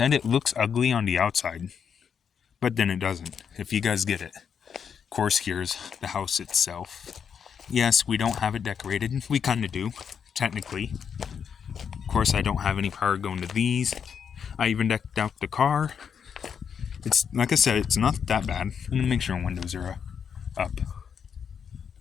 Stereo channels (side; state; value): right; quieter; 7.2 dB